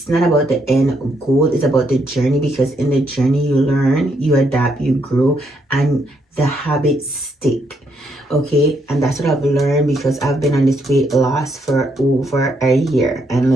not about the end goal. It's about the journey, because in the journey, you learn, you adapt, you grow, and the habits stick. Okay, and that's what I've learned, because I've been on this weight loss for over a year. And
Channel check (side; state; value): both; normal; correlation 0.75